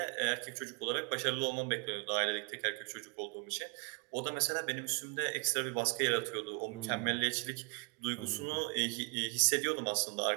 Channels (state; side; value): quieter; left; 32.5 dB